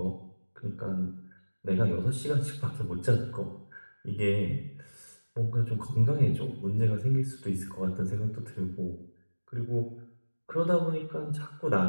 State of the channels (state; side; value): inverted; both; correlation -1.00